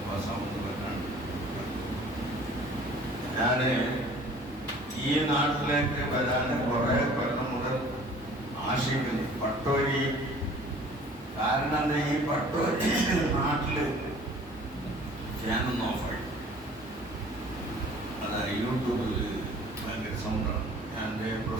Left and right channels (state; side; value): normal; both; correlation 0.50